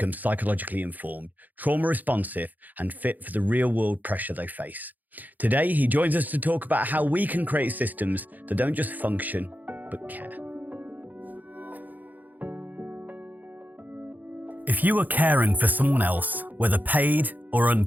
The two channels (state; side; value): late; left; 0.083 ms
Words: psychologically informed, trauma responsive, and fit for the real world pressure they face. Today, he joins us to talk about how we can create systems that don't just function, but care. If you are caring for someone else, whether paid or